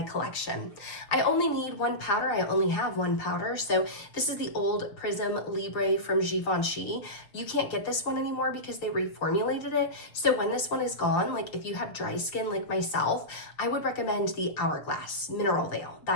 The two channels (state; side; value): late; right; 6.6 ms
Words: collection. I only need one powder, I only have one powder. So this is the old Prism Libre from Givenchy. You can't get this one anymore because they reformulated it. So when this one is gone, like if you have dry skin like myself, I would recommend the Hourglass Mineral Veil.